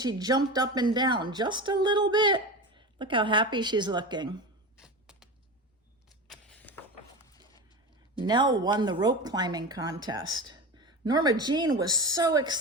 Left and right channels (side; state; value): both; normal; correlation 0.26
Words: jumped up and down just a little bit. Look how happy she's looking. Nell won the rope climbing contest. Norma Jean was so